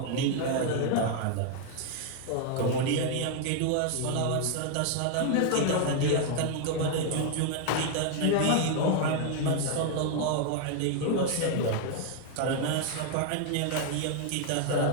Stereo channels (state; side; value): different; both; correlation 0.00